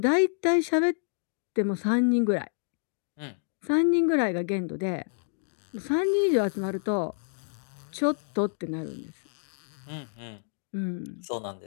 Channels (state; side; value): silent; right; digital silence